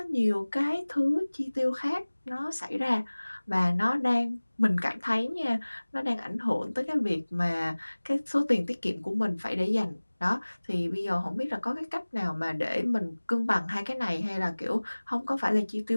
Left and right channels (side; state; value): both; inverted; correlation -1.00